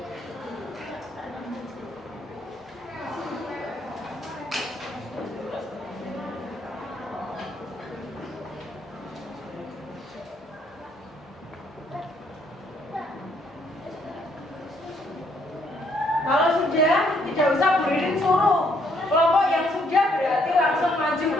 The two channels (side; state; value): both; normal; correlation 0.70